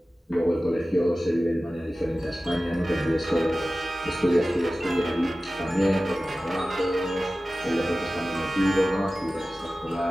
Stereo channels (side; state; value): both; normal; correlation 0.96